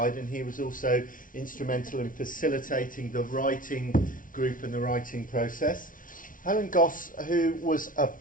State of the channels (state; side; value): late; right; 0.39 ms